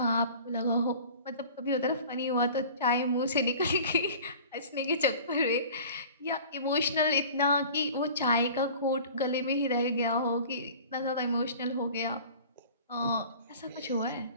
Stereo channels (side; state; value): both; inverted; correlation -0.43